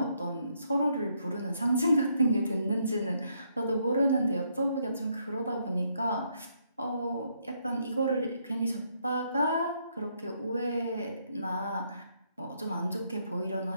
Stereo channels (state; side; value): inverted; both; correlation -0.73